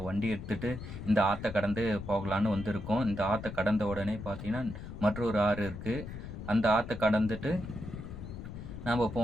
வண்டி எடுத்துகிட்டு இந்த ஆற்றை கடந்து போகலான்னு வந்திருக்கோம். இந்த ஆற்றை கடந்த உடனே பார்த்தீங்கன்னா மற்றொரு ஆறு இருக்குது. அந்த ஆற்றை கடந்துட்டு நம்ம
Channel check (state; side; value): noise; left; rumble, 10 dB below the sound